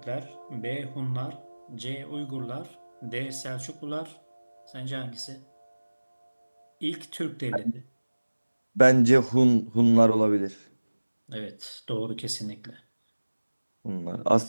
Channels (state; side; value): inverted; both; correlation -1.00